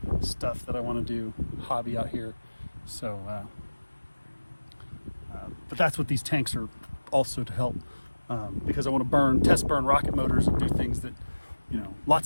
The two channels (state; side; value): inverted; both; correlation -1.00